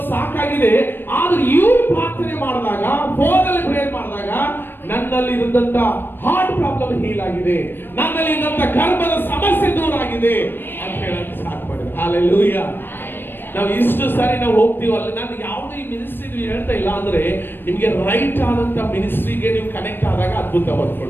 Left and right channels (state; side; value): late; right; 0.097 ms